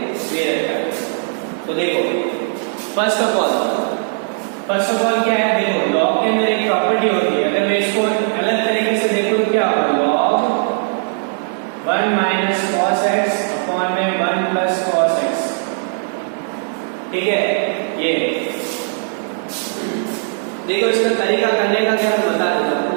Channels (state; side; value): silent; left; 67 dB below the other